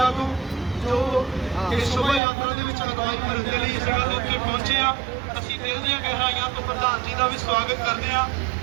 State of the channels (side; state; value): left; drops out; at 2.2 s